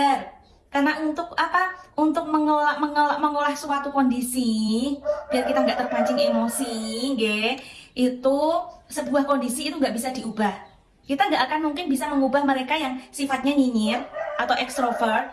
Karena untuk mengolah suatu kondisi biar kita nggak terpancing emosi, itu sebuah kondisi itu nggak bisa diubah. Kita nggak akan mungkin bisa mengubah mereka yang sifatnya nyinyir atau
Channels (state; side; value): identical; both; correlation 1.00